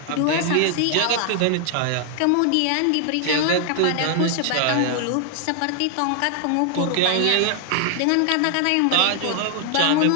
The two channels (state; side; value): different; both; correlation 0.00